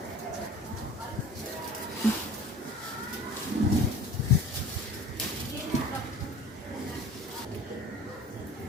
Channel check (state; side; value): normal; both; correlation 0.42